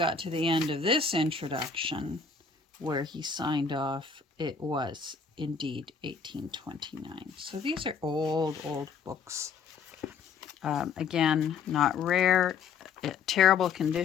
to the end of this introduction, where he signed off, it was indeed 1829. So these are old books. Again, not rare, terrible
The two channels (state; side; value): quieter; right; 5.7 dB